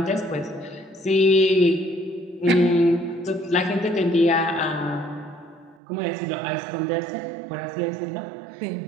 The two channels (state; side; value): drops out; left; at 5.8 s